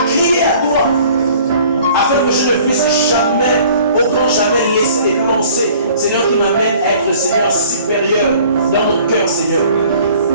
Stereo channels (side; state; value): both; inverted; correlation -0.52